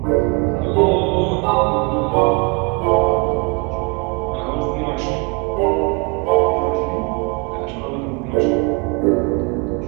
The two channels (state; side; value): quieter; left; 32.1 dB